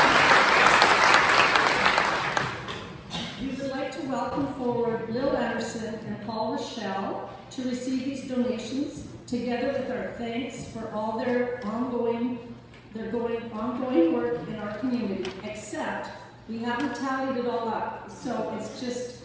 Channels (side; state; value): both; identical; correlation 1.00